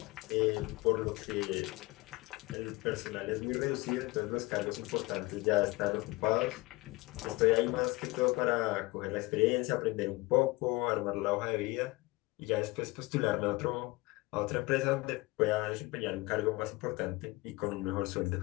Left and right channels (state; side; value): quieter; right; 22.4 dB